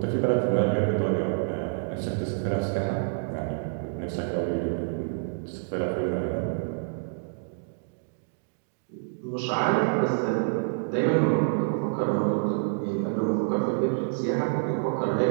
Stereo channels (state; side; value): silent; left; digital silence